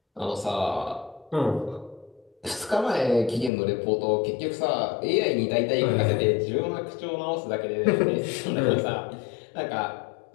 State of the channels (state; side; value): drops out; right; at 3.5 s